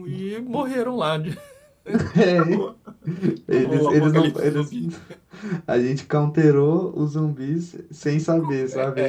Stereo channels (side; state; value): both; identical; correlation 1.00